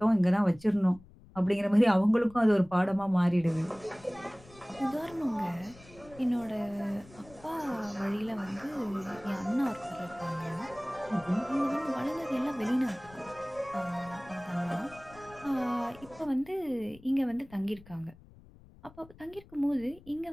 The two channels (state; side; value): noise; left; rumble, 23 dB below the sound